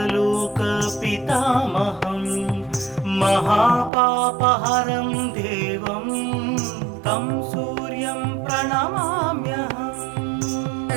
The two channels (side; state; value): left; drops out; at 3.9 s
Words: महापापहरं देवं तं सूर्यं प्रणमाम्यहम्